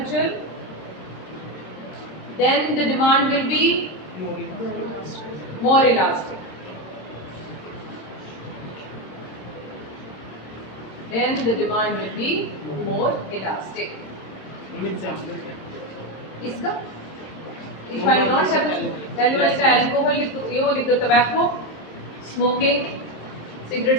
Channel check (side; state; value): right; late; 26 ms